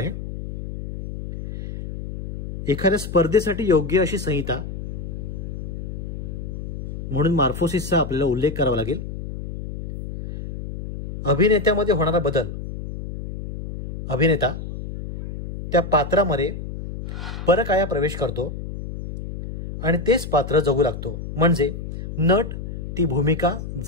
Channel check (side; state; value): left; noise; hum, 8 dB below the sound